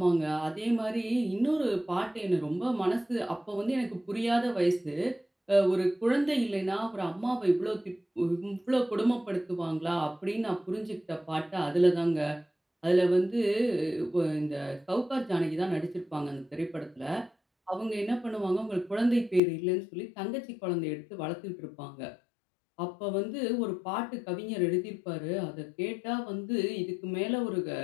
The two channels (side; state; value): right; drops out; at 19.4 s